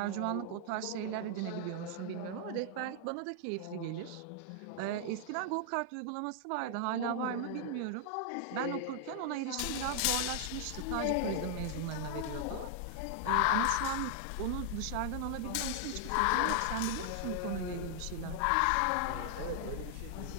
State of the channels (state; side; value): different; both; correlation 0.00